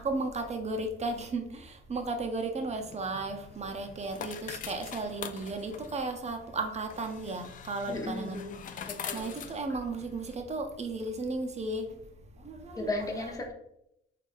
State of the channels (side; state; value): both; normal; correlation 0.36